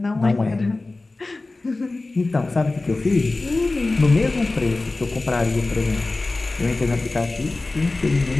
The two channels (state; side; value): quieter; right; 3.2 dB